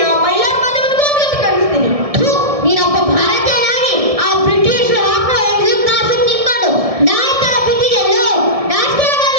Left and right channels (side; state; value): left; late; 1.7 ms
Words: ಆ ಮೈಲಾರ ಮಾಧ್ಯಮಕ್ಕೂ ಒಂದು ಗತಿ ಕಾಣಿಸ್ತೀನಿ. ನೀನೊಬ್ಬ ಭಾರತೀಯನಾಗಿ ಆ ಬ್ರಿಟಿಷ್ ಹಾಕೋ ಎಕ್ಸಿಮ್ ಕಾಸು ತಿನ್ಕೊಂಡು ನಾಯಿ ತರ ಬಿದ್ದಿದೆಯಲ್ಲೋ, ನಾಚಿಕೆ